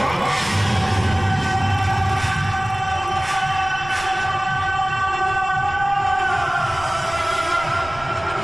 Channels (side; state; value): right; noise; rumble, 16 dB below the sound